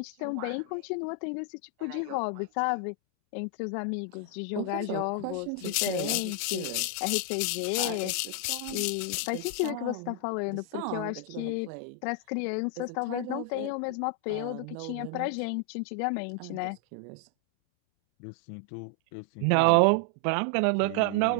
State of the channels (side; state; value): both; different; correlation 0.00